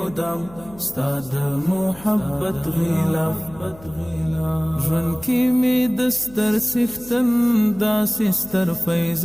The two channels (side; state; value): left; noise; hum, 21 dB below the sound